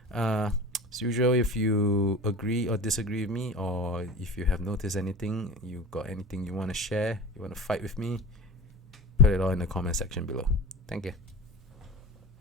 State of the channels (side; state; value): both; normal; correlation 0.33